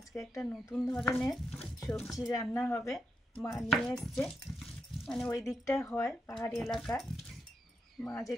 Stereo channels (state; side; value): normal; both; correlation 0.84